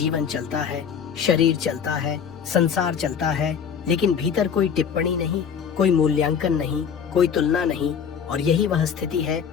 चलता है, शरीर चलता है, संसार चलता है, लेकिन भीतर कोई टिप्पणी नहीं, कोई मूल्यांकन नहीं, कोई तुलना नहीं। और यही वह स्थिति है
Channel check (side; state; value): right; quieter; 7.3 dB